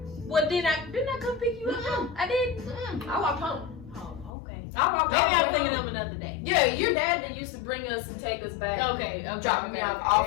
Well, didn't I come pick you up? I did. I walked home. Oh, okay. I walked Maybe I'm home. thinking of another day. Yeah, your dad that used to bring us and take us back. Okay. Drop me off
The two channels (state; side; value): drops out; right; at 4.3 s